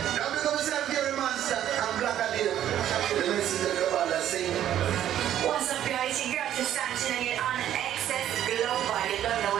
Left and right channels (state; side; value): quieter; left; 11.3 dB